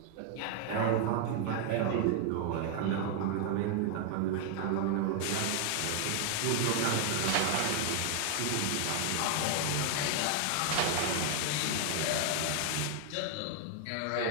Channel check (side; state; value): both; different; correlation 0.00